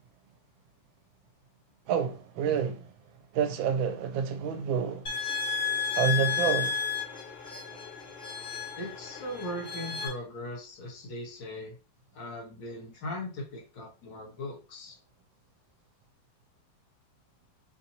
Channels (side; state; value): both; normal; correlation -0.08